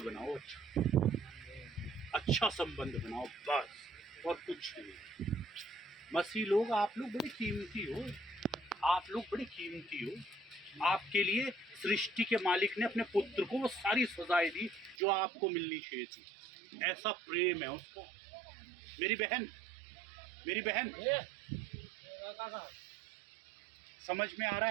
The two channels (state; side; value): drops out; left; at 15.0 s